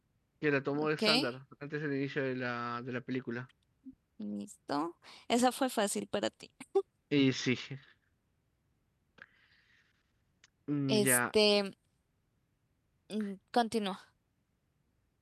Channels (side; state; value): both; identical; correlation 1.00